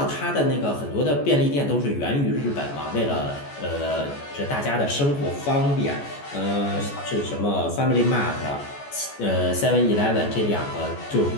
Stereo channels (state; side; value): late; right; 14 ms